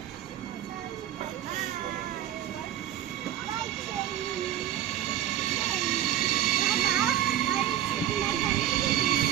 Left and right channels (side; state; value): left; quieter; 11.6 dB